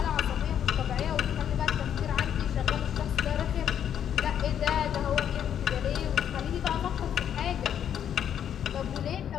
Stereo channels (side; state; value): right; quieter; 9.3 dB